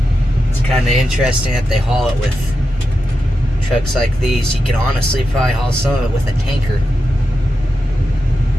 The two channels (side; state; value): both; normal; correlation 0.88